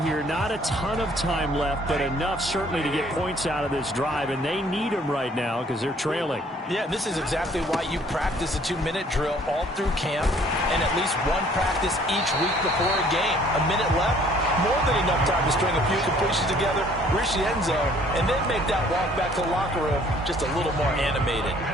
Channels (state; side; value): normal; both; correlation 0.58